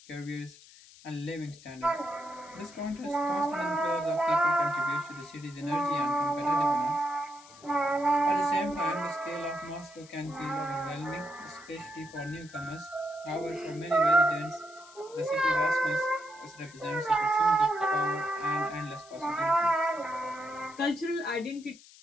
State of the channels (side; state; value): left; noise; hiss, 22 dB below the sound